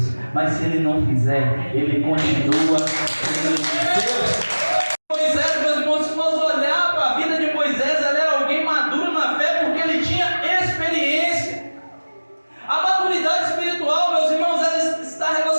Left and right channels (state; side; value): inverted; both; correlation -1.00